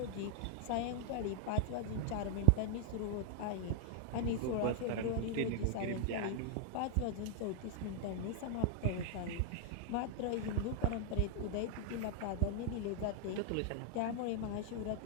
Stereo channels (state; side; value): different; both; correlation -0.01